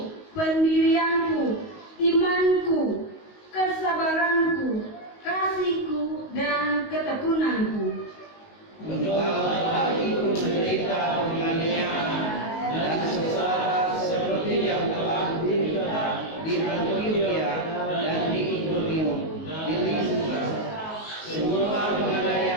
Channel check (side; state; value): right; late; 19 ms